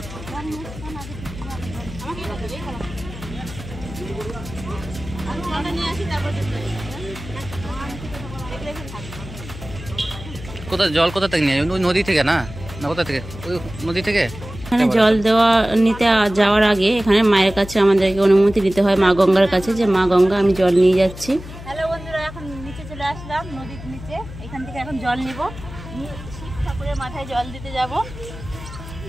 কোথা জল কোথা থেকে নিয়ে? ওই নদী থেকে না? না কোথা থেকে? ওই নদী থেকে। এখানে জল দেওয়া নিতে যাওয়ার আগে এখানে মায়ের কাছে আমাদেরকে অনুমতি দিতে হয়, মা গঙ্গার কাছে, যে মা গঙ্গা আমি জল নিয়ে যাচ্ছি। হ্যালো বন্ধুরা, এখন নিচে চলে আসলাম নদীর নিচে। এখান থেকে এখন জল নিব, শিব ঠাকুরের মাথায় জল দিতে যাব।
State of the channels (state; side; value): noise; left; hum, 13 dB below the sound